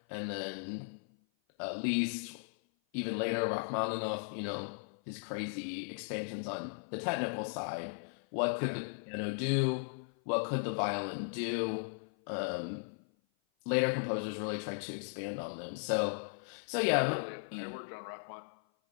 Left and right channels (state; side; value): silent; right; 53 dB below the other